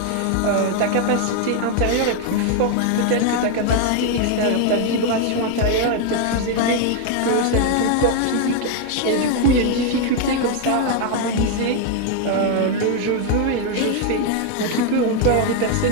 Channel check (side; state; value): both; different; correlation 0.01